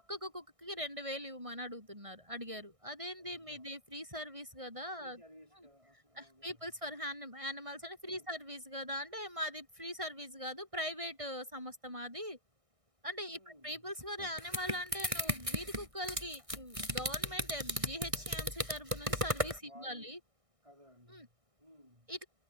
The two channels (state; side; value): late; left; 1.6 ms